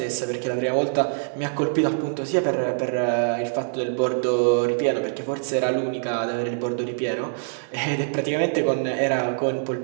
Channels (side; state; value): left; silent; digital silence